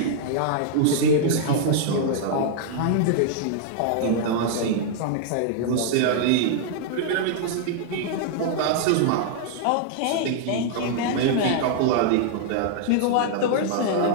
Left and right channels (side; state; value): both; different; correlation -0.01